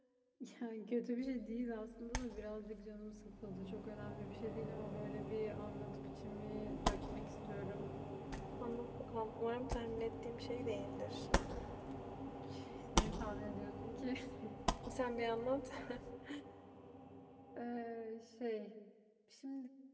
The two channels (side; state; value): both; identical; correlation 1.00